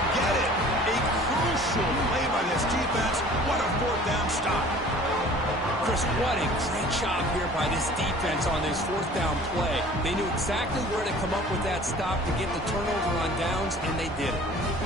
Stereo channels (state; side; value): normal; both; correlation 0.48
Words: get it. A crucial play by this defense. What a fourth down stop. Chris, what a great job here by this defense on this fourth down play. They knew exactly where to come up with that stop to get the turnover on downs, and they did it.